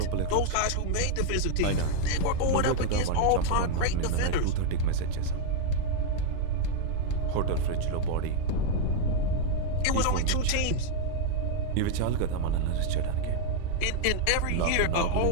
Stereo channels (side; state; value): both; different; correlation 0.00